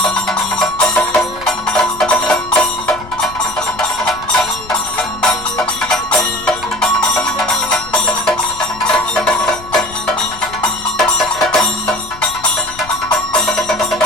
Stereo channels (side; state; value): left; noise; rumble, 18 dB below the sound